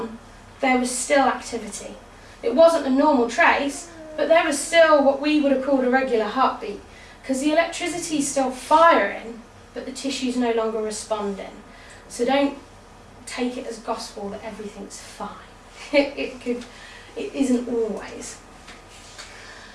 there was still activity. It wasn't a normal trace, but there was still what we would have called a regular heartbeat, because the electricity is still firing, but the tissue's no longer responding. So don't take it as gospel that everything's fine. It isn't always.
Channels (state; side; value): identical; both; correlation 1.00